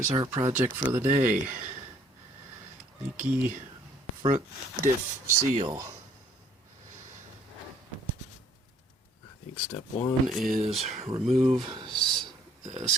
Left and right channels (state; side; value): normal; both; correlation 0.61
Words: Here's our project for the day. Leaky front diff seal. I think step one is remove the